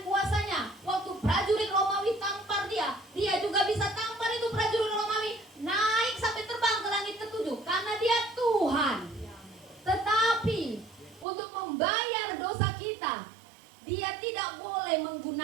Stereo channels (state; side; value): drops out; left; at 11.2 s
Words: kuasanya. Waktu prajurit Romawi tampar dia, dia juga bisa tampar itu prajurit Romawi naik sampai terbang ke langit ketujuh. Karena dia Tuhan. Tetapi untuk membayar dosa kita, dia tidak boleh